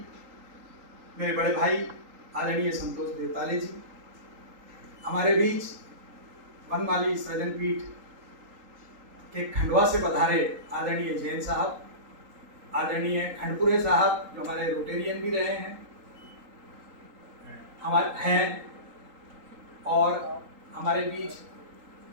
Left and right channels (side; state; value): left; late; 3.8 ms